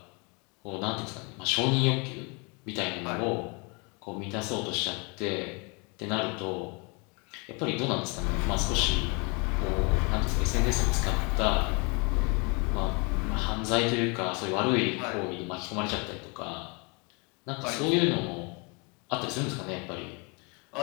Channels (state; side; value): quieter; right; 31.6 dB